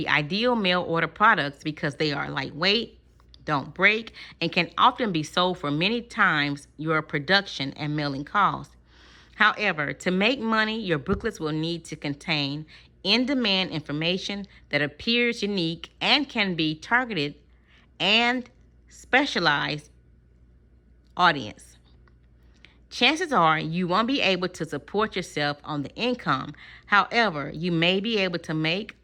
ideal mail order products because they are lightweight, don't break, and can often be sold for many times your production and mailing costs. However, to make money, your booklets will need to contain in-demand information that appears unique and can be targeted and specialized audience. Chances are you won't be able to support yourself on the income. However, you may be able to make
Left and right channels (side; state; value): both; identical; correlation 1.00